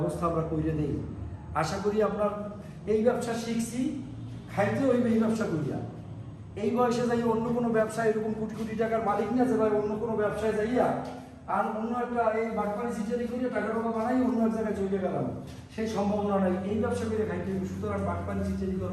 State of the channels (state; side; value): identical; both; correlation 1.00